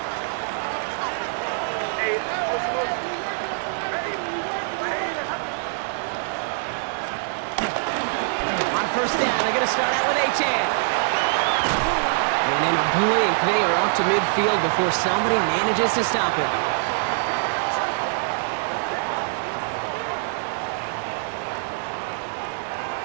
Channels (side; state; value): left; silent; digital silence